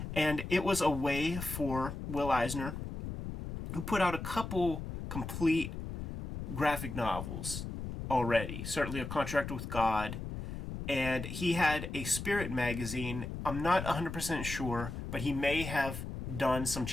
And it was a way for Will Eisner, who put out a couple complete graphic novels already, certainly A Contract with God, and he had a Spirit magazine. I'm not 100% sure, but he may have done some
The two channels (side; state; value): left; noise; rumble, 7 dB below the sound